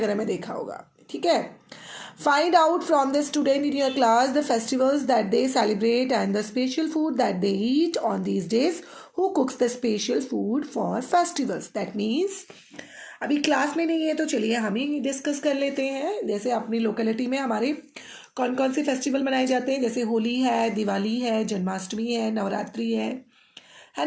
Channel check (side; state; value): both; identical; correlation 1.00